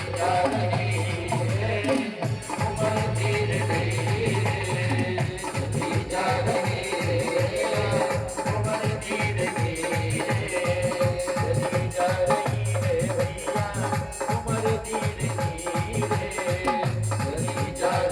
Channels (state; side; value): identical; both; correlation 1.00